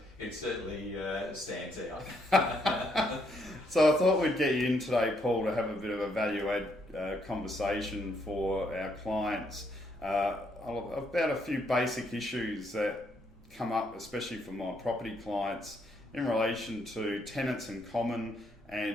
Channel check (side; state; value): both; normal; correlation 0.73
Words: It certainly stands out. So I thought we'd get you in today, Paul, to have a bit of a value-add conversation for our clients about a few basic issues that come up, especially for my property clients, in relation to tenants in common